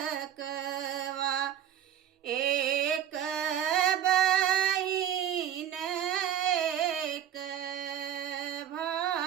एक बहिन एक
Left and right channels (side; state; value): left; quieter; 10.2 dB